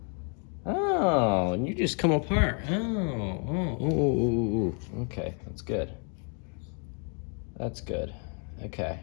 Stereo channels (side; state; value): right; quieter; 39.9 dB